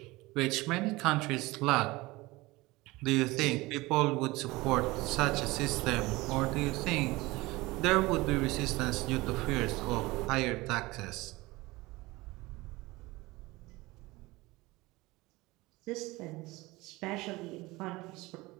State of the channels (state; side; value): quieter; left; 21.1 dB